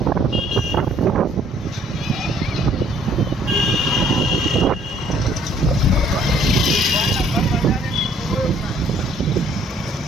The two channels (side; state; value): both; normal; correlation 0.61